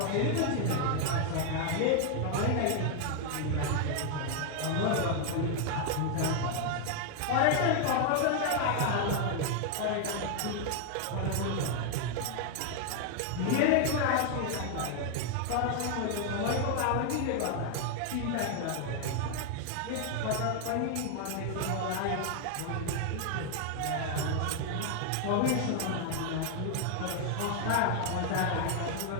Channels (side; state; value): both; different; correlation 0.00